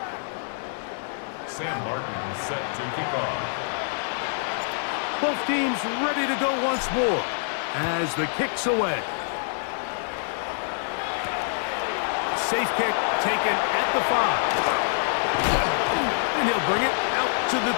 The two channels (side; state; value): right; silent; digital silence